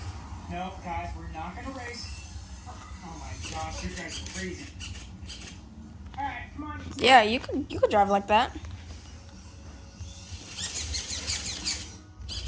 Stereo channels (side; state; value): both; identical; correlation 1.00